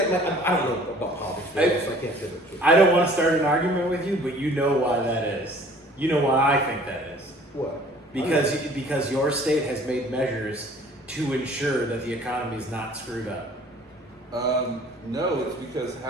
I don't know about politics, so I can't say that. I don't want to start an argument with you, but you know why that is. You know why I think that is. What? Because your state has made measures to ensure that the economy is not screwed up. No, it's because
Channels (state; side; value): normal; both; correlation 0.52